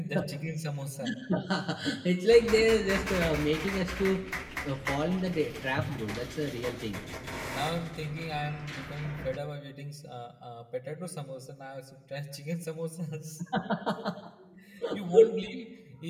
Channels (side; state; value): both; identical; correlation 1.00